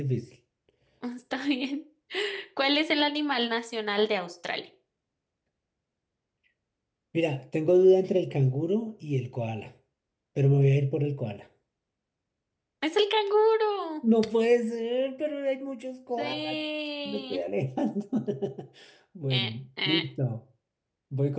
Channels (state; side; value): identical; both; correlation 1.00